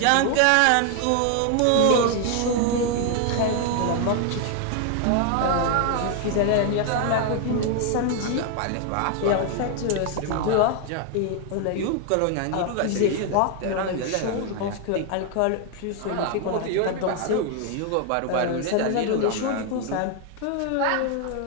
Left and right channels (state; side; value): different; both; correlation 0.00